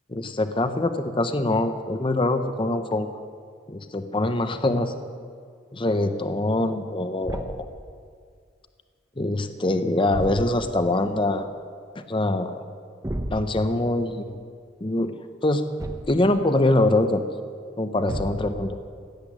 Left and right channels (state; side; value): normal; both; correlation 0.63